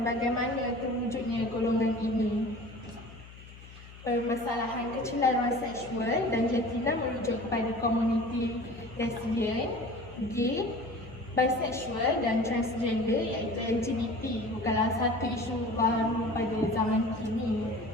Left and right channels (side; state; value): left; noise; hum, 18 dB below the sound